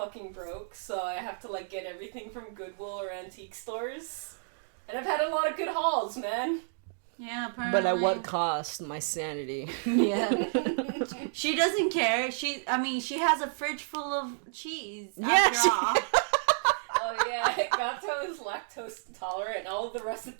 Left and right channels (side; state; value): left; silent; digital silence